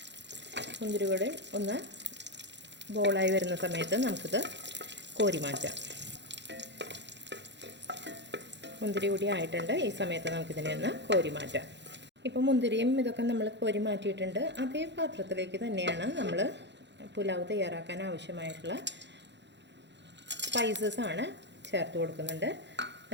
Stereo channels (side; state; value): left; late; 0.52 ms